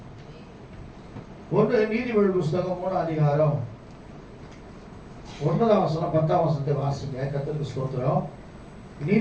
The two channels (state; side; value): identical; both; correlation 1.00